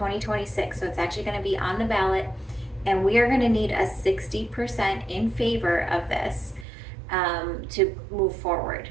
So it's actually going to be on the ballot, and we are going to need a 60% in favor of this to move forward.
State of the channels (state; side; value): drops out; left; at 6.7 s